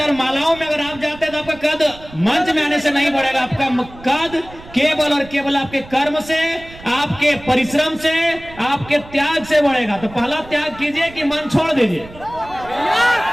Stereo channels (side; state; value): right; noise; rumble, 19 dB below the sound